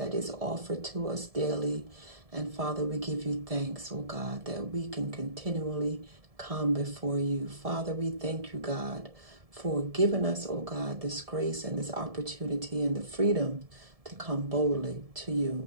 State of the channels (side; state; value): left; late; 1.7 ms